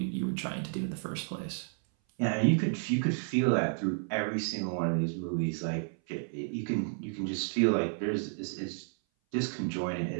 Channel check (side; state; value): left; silent; 57 dB below the other